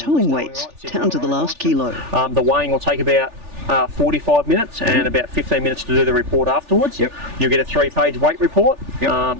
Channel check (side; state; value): left; late; 3.4 ms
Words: weights, down to the last kilo. The weighing will take about 45 minutes and about 15 minutes to do the report afterwards. Yep. You'll get a 3-page weight report. Yep.